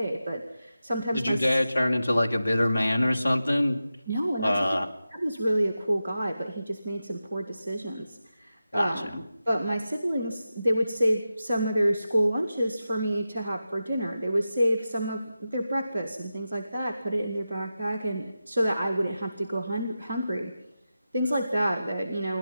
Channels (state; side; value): inverted; both; correlation -0.92